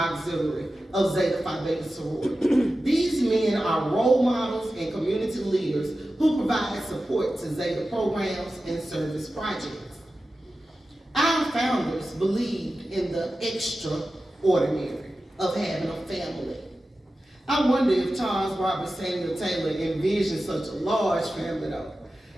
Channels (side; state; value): both; normal; correlation 0.94